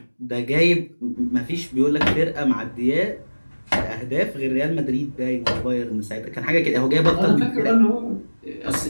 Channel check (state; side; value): inverted; both; correlation -1.00